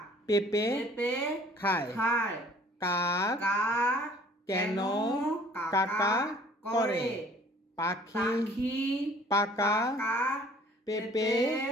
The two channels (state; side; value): normal; both; correlation 0.54